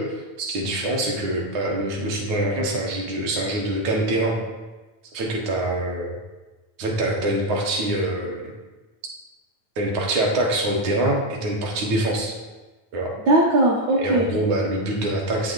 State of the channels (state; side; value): late; left; 9.4 ms